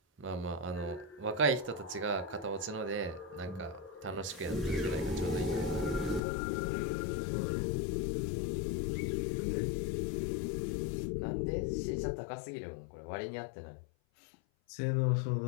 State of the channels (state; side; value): drops out; right; at 6.2 s